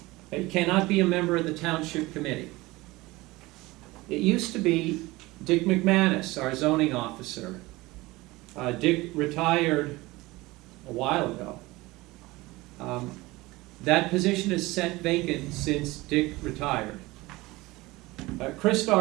It cannot be a member of the township committee. It used to be Dick McManus, our zoning officer. Dick retired a while ago. That position is set vacant since Dick retired. Krista,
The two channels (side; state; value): left; quieter; 20.7 dB